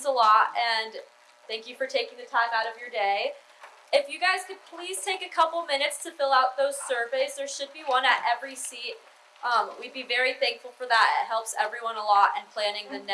a lot, and thank you for taking the time out of your day. If you guys could please take a couple minutes to fill out those surveys, there should be one at every seat. We'd be very thankful for that. It helps everyone a lot in planning the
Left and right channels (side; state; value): both; identical; correlation 1.00